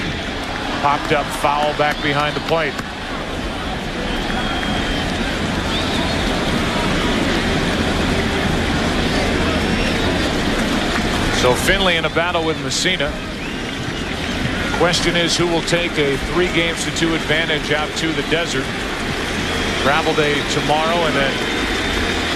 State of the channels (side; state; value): both; identical; correlation 1.00